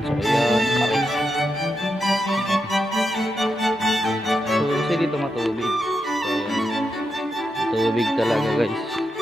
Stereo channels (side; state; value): both; normal; correlation 0.85